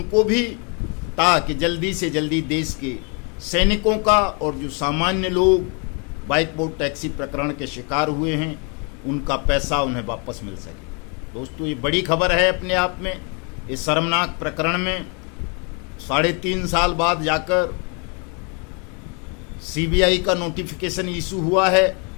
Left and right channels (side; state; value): right; quieter; 35.2 dB